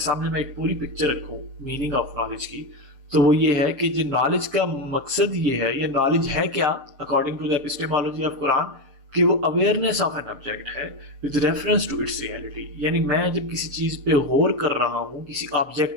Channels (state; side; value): late; left; 7.5 ms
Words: میں ایک پوری پکچر رکھوں میننگ آف نالج کی، تو وہ یہ ہے کہ جو نالج کا مقصد یہ ہے، یہ نالج ہے کیا according to the epistemology of قرآن، کہ وہ اویئرنیس آف این آبجیکٹ ہے with reference to its reality۔ یعنی میں جب کسی چیز پہ غور کر رہا ہوں، کسی